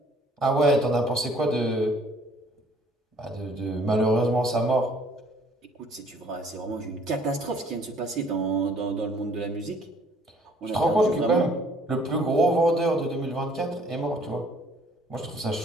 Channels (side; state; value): both; normal; correlation 0.59